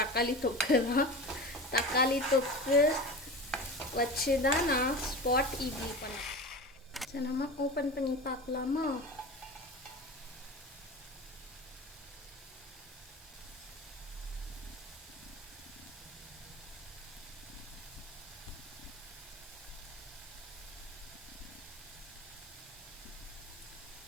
தொக்கு தான். தக்காளி தொக்கு வச்சு தான் நான் ஸ்பாட் இட்லி பண்ணேன். சரி, நம்ம ஓப்பன் பண்ணி பார்க்கலாமா?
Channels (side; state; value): both; normal; correlation 0.31